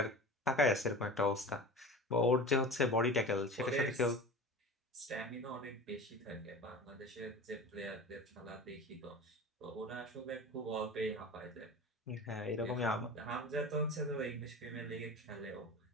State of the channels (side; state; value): both; normal; correlation 0.34